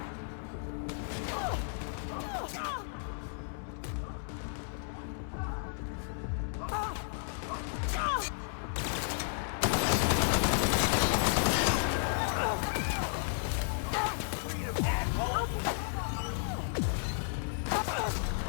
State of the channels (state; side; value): silent; right; 56 dB below the other